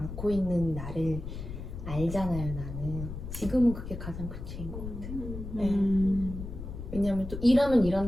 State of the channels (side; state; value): left; noise; rumble, 8 dB below the sound